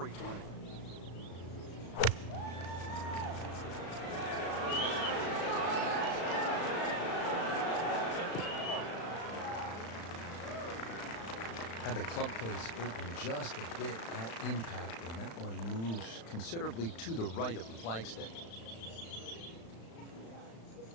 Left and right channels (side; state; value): right; late; 36 ms